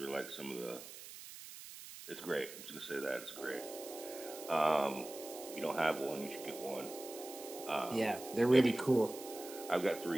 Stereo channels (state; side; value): noise; right; hiss, 13 dB below the sound